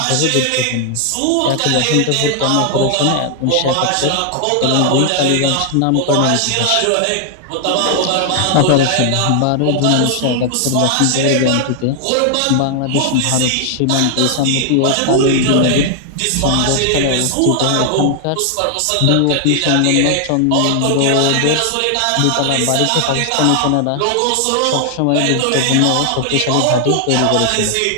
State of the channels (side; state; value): both; different; correlation 0.00